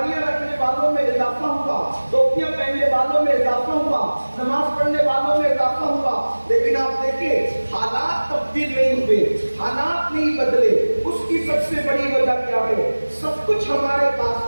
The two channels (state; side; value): inverted; both; correlation -1.00